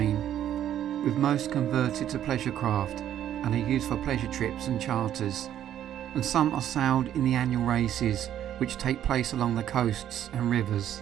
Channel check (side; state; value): left; quieter; 10.9 dB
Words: with most converted to pleasure craft and are used for pleasure trips and charters, and some are sailed in the annual races which take place along the coasts and rivers.